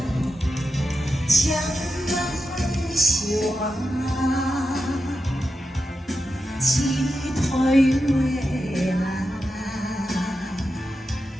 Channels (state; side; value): normal; both; correlation 0.89